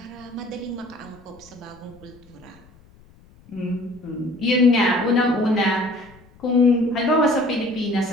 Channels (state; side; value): noise; left; rumble, 26 dB below the sound